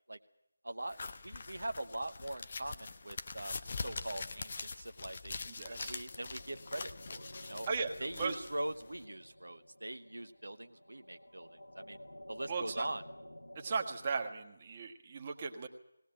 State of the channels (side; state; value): both; inverted; correlation -0.91